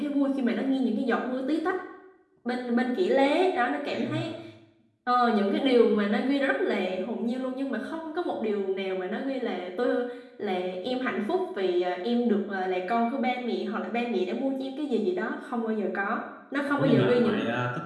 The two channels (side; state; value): both; identical; correlation 1.00